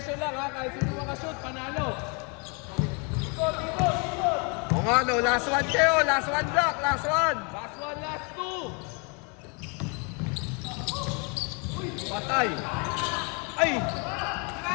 lang, ha? Kahit sino makashoot, panalo. O nga no, last one kayo. Last one block. Last one. Last one, last two. Patay. Ay.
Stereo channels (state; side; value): quieter; right; 33.6 dB